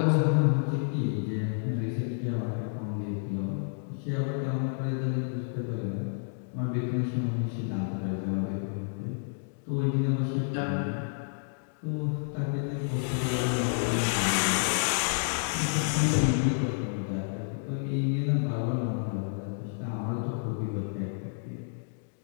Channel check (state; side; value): silent; right; digital silence